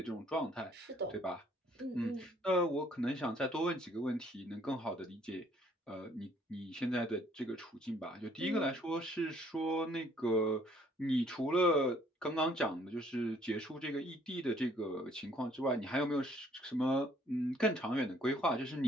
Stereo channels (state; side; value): normal; both; correlation 0.62